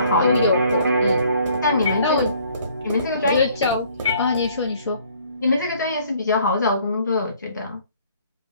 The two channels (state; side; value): inverted; both; correlation -0.60